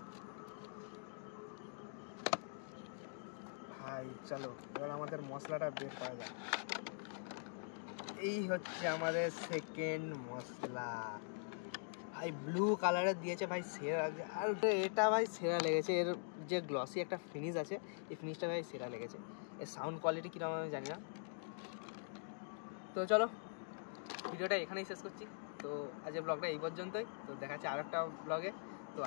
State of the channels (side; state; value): right; silent; digital silence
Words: ভাই চলো এবার আমাদের মশলাটা বের করা যায়। এই হচ্ছে আমাদের সেকেন্ড মশলা, ভাই ব্লু কালারের দিয়েছে ভাই, সেরা লাগছে। আর এটা ভাই সেরা লেগেছে, এর যে গ্লসি একটা ফিনিশ আছে, এই ফিনিশটা ভাই সেরা লেগেছে। এর সাউন্ড কোয়ালিটি কীরকম আমি জানি না। তো চলো ভিডিওটা এখানেই শেষ করছি। তো আজকের ব্লগটা এই পর্যন্তই, তো দেখা যাচ্ছে আর একটা ব্লগে। তো